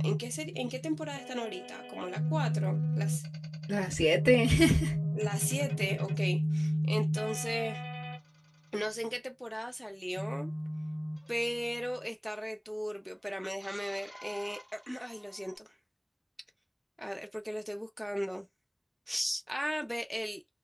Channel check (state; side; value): identical; both; correlation 1.00